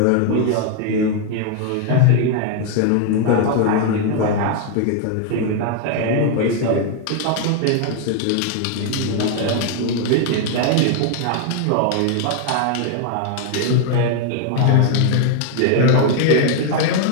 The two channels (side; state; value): both; different; correlation 0.00